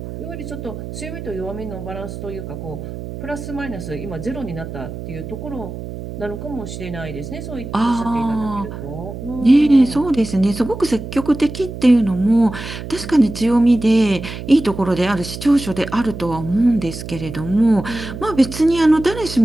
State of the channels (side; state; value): right; noise; hum, 9 dB below the sound